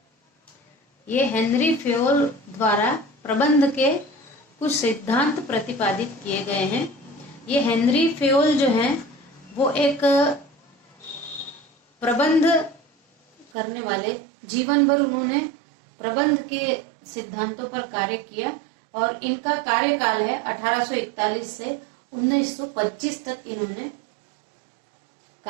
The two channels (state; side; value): drops out; left; at 13.5 s